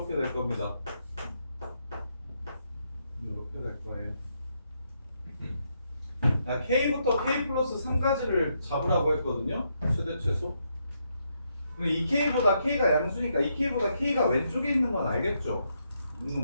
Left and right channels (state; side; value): inverted; both; correlation -0.78